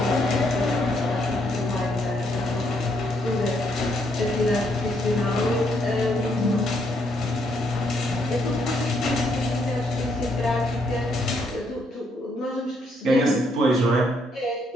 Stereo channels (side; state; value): both; normal; correlation 0.73